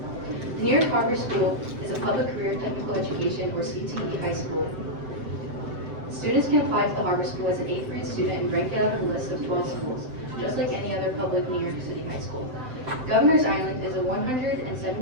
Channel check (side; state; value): left; late; 7.8 ms